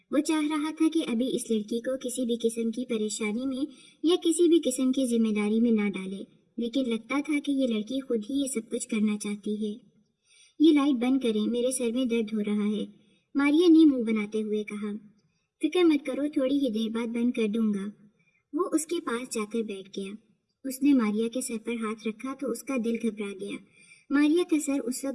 وہ چاہ رہا تھا کہ ابھی اس لڑکی کو کسی بھی قسم کی پریشانی میں یا کسی بھی قسم کی ذمہ داری میں نہ ڈالے، لیکن لگتا تھا کہ یہ لڑکی خود ہی یہ سب کچھ کرنا چاہتی ہے۔ یہ لائٹ بند کریں، میرے سر میں درد ہو رہا ہے، ماریا نے منہ بناتے ہوئے کہا۔ فکر مت کرو، تھوڑی ہی دیر بعد بند کر دوں گا۔ وہ اس کے پاس جا کر بیٹھ گیا۔ اس نے ماریا کے سر پر ہاتھ رکھا تو اس کا دل گھبرا گیا۔ ماریا کا سر اس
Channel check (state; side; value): identical; both; correlation 1.00